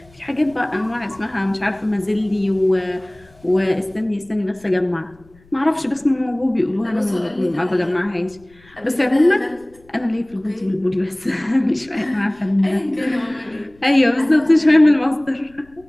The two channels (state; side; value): noise; left; rumble, 29 dB below the sound